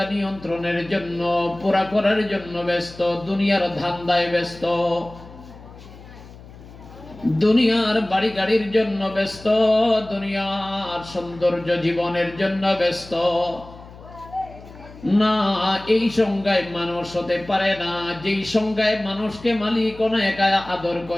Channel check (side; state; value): left; noise; hum, 19 dB below the sound